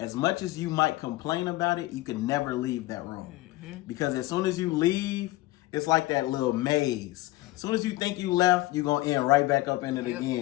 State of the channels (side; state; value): right; quieter; 18.7 dB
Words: much as you might complain about it, you can never leave that room. Because as soon as you leave, it's like that little maze. As soon as you think you left, you're going to end right back up in it